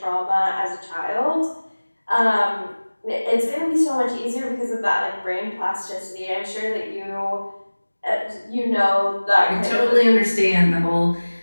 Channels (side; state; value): both; inverted; correlation -1.00